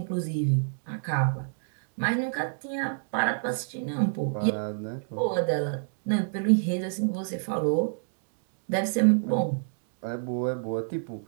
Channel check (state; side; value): silent; left; digital silence